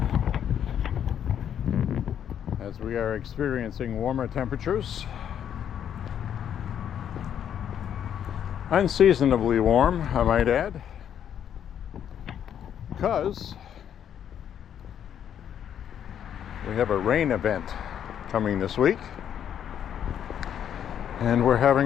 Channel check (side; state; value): right; quieter; 9.3 dB